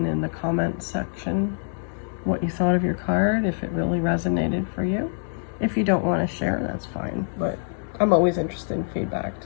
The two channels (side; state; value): right; silent; digital silence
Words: the comment section what you thought of your card, if it really resonated for you. If you don't want to share, that's fine. But I'm always interested in feedback